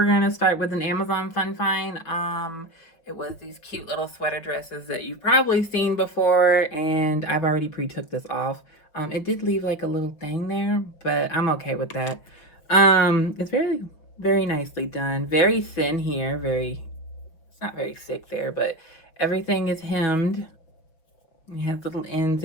going to start with an Amazon fun find. It was these cute little sweater dresses that you've probably seen before, and I've already pre-took this off. It did leave like a little thing there, but I'm okay with that. It's very nicely done. Very thin here. It's not very thick there, but everything is hemmed. It has little ends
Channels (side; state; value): right; late; 5.9 ms